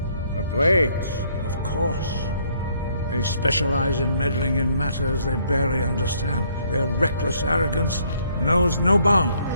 The Blades, of course. They specialize in meddling in matters they barely understand. Their reckless arrogance knows no bounds.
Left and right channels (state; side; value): inverted; both; correlation -0.66